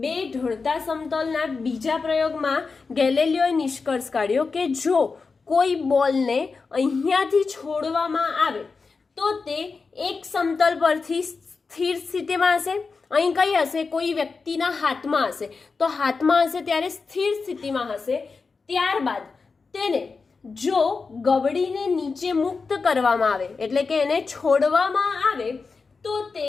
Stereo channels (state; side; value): quieter; right; 4.6 dB